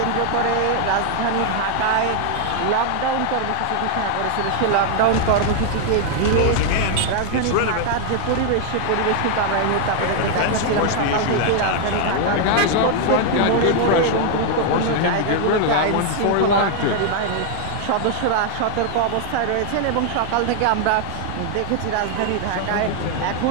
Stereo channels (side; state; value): both; different; correlation 0.00